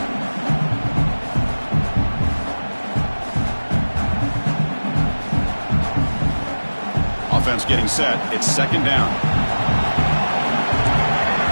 Offense getting set. It's second down.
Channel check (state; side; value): inverted; both; correlation -1.00